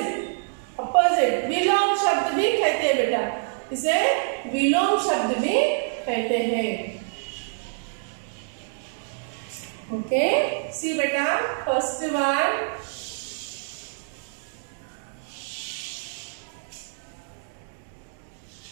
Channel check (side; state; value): left; silent; digital silence